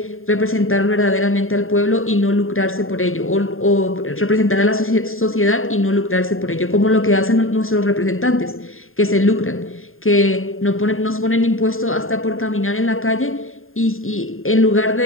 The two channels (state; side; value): late; right; 0.61 ms